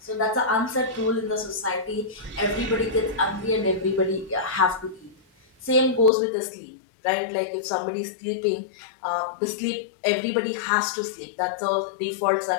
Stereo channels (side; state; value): right; drops out; at 6.1 s